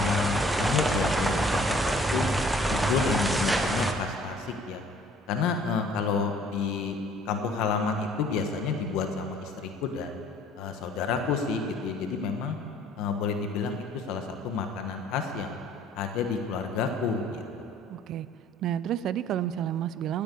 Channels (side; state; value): both; normal; correlation 0.55